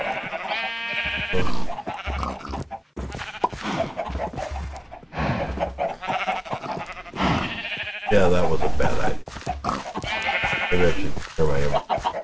Yeah, that was a bad idea. Maybe I should clear my inventory.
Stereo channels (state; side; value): identical; both; correlation 1.00